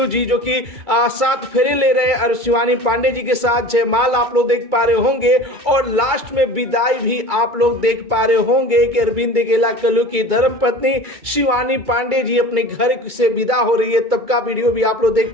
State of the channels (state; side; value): late; left; 2.3 ms